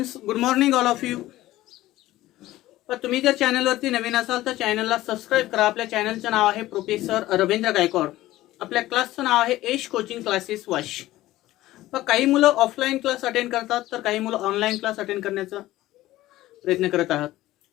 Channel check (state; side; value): quieter; right; 16.0 dB